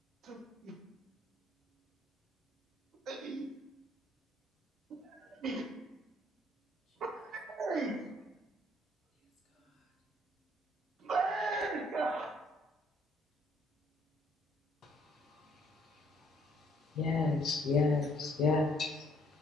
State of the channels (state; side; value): normal; both; correlation 0.64